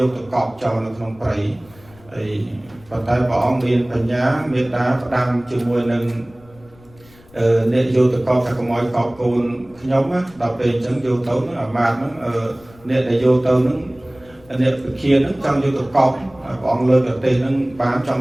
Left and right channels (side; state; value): left; noise; rumble, 26 dB below the sound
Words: từ cọp trò nó không phải ấy và tay bỏ miền phần nhá miền đá đăng chừng mùi nâng nên vô từ con phải có mọi cọp cồn nhóm á đọc về chẳng vô tấu nó ở màn nó nên là vô tấu nó nên kia nó trong vô từ cọp bọn lơ được tiền nó bán